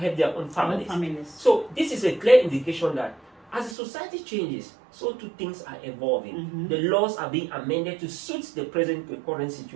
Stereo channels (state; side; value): drops out; left; at 3.8 s